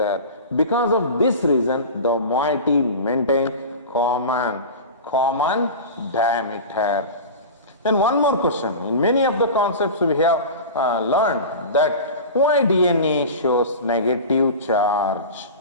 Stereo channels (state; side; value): inverted; both; correlation -0.31